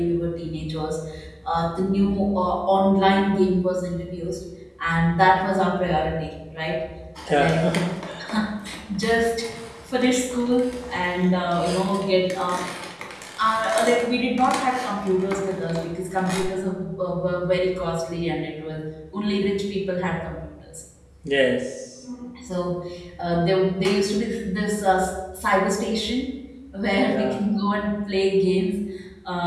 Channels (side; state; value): both; identical; correlation 1.00